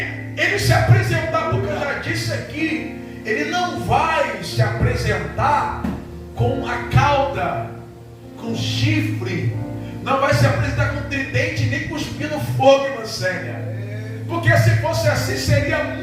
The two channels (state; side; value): identical; both; correlation 1.00